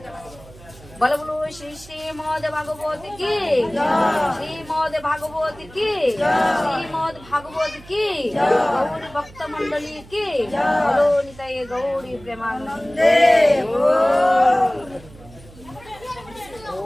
বলো বলো শ্রী শ্রীমদ ভাগবত কি, শ্রীমদ ভাগবত কি, শ্রীমদ ভাগবত কি, গৌরী ভক্ত মন্ডলী কি, বলো নিতাই গৌরী প্রেমানন্দে।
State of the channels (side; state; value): right; noise; hum, 21 dB below the sound